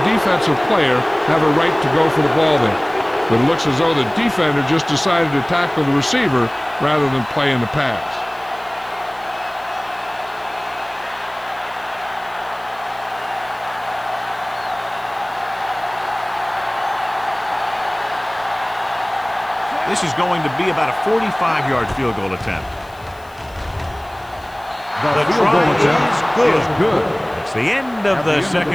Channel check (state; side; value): noise; left; hiss, 27 dB below the sound